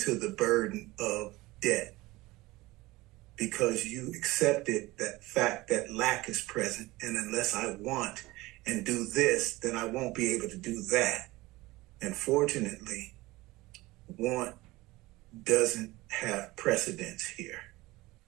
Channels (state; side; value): quieter; left; 19.9 dB